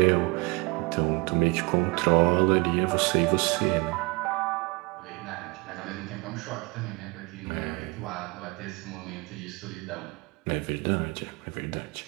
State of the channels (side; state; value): left; quieter; 27.5 dB